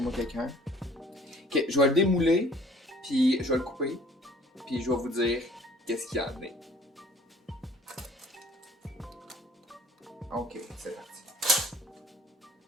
quelqu'un. Ok, je vais le démouler, puis je vais le couper, puis je vais vous dire qu'est-ce qu'il y en est. Ok, c'est parti.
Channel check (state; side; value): normal; both; correlation 0.53